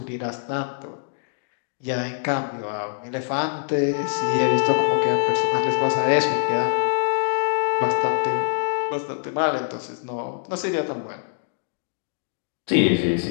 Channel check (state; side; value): silent; right; digital silence